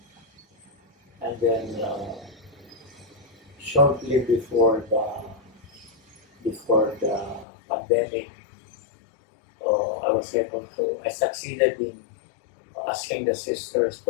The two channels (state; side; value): drops out; right; at 7.5 s